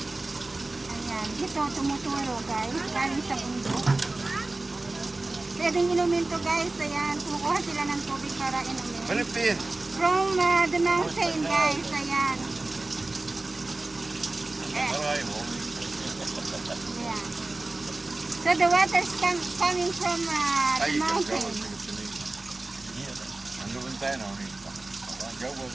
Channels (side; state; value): left; quieter; 3.0 dB